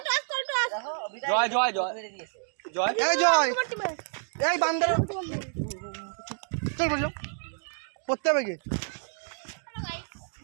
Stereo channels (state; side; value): silent; left; digital silence